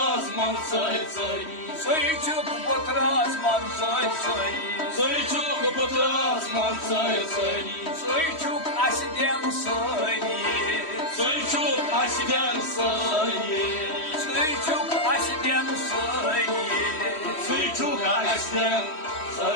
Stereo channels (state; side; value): late; right; 3.1 ms